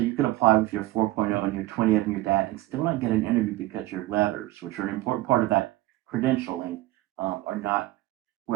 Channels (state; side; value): quieter; left; 17.6 dB